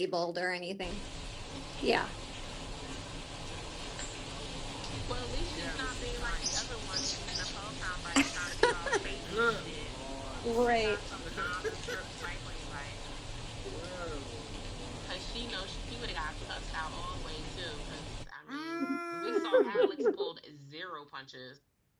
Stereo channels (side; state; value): both; identical; correlation 1.00